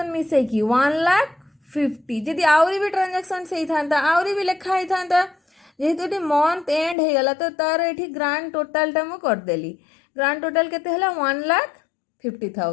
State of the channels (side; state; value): right; drops out; at 7.0 s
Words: मिसे कि 1,50,000 जदि आउरी भी ट्रांजैक्शन से था आउरी भी लिखा ही था जेहेतु ये मंथ एंड हो गला तो तार ये ग्रांड टोटल टा मु करदेली ग्रांड टोटल केते हला